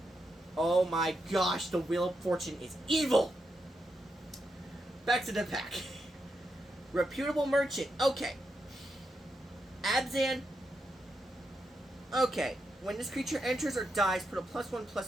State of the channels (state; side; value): normal; both; correlation 0.84